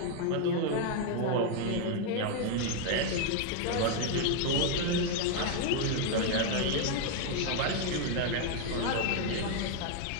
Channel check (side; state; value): both; different; correlation 0.00